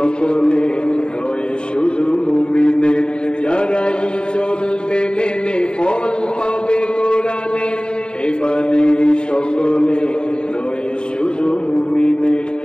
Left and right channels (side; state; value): right; late; 0.050 ms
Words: নয় শুধু মুমিনের যারাই চলবে মেনে ফল পাবে কোরআনে এই বাণী সকলে নয় শুধু মুমিনের